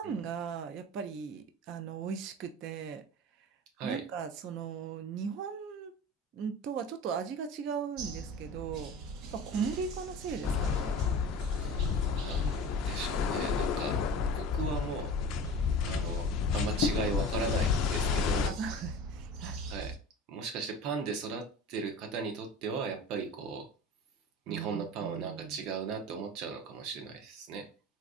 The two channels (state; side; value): normal; both; correlation 0.36